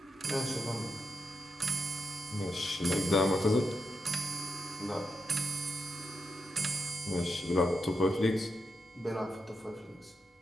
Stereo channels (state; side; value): normal; both; correlation 0.85